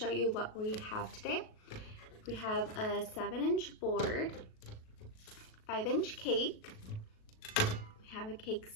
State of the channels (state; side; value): late; right; 37 ms